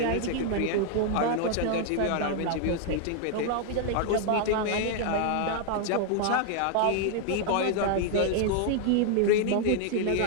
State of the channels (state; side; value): different; both; correlation 0.00